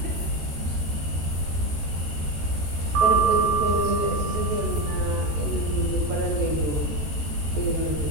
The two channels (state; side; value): late; left; 13 ms